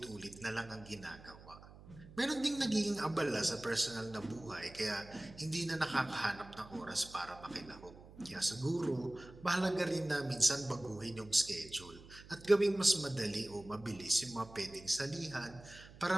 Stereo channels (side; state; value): right; noise; hum, 19 dB below the sound